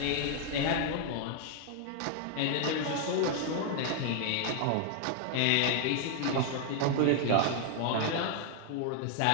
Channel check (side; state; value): both; different; correlation 0.00